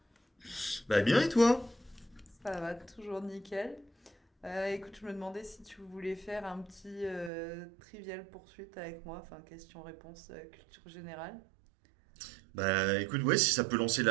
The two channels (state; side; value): drops out; left; at 7.3 s